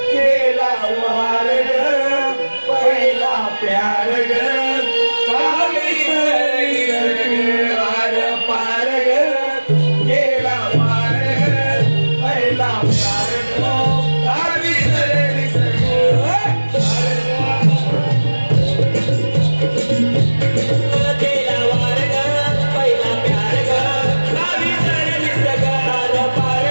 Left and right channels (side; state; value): both; inverted; correlation -1.00